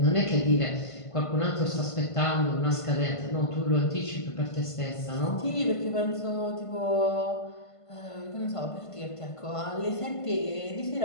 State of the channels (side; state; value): right; late; 1.5 ms